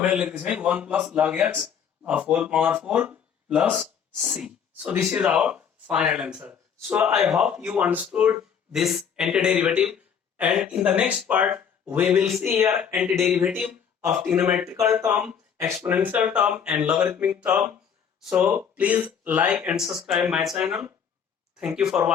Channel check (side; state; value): right; quieter; 7.5 dB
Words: लेख्दैछौँ है, 1 plus log x of whole power 4 plus c. So this is our final answer. So I hope you understood this antiderivative, and in the next part we will see here antiderivative of trigonometrical term, exponential term and logarithmic term. So please like and subscribe my channel. Thank you for